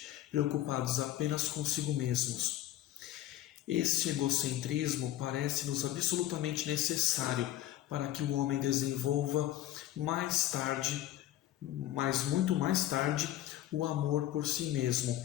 preocupados apenas consigo mesmos. Este egocentrismo parece-nos absolutamente necessário para que o homem desenvolva mais tarde, mas muito mais tarde, o amor por si mesmo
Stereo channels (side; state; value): right; quieter; 13.6 dB